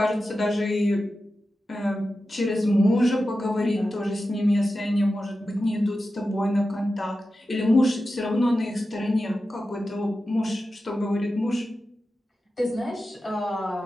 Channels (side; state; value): both; normal; correlation 0.92